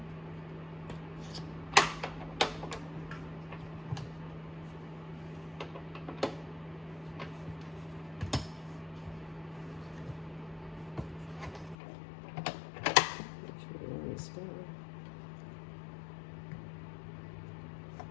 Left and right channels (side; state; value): right; drops out; at 11.8 s